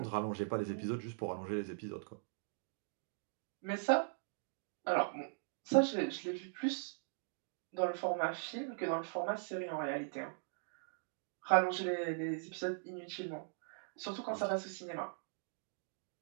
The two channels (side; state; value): left; silent; digital silence